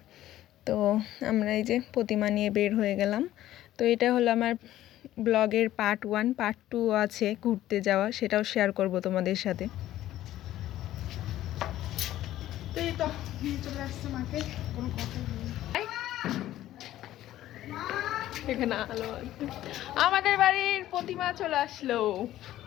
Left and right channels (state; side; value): quieter; right; 13.8 dB